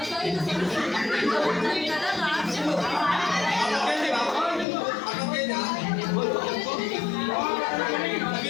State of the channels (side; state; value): right; drops out; at 4.7 s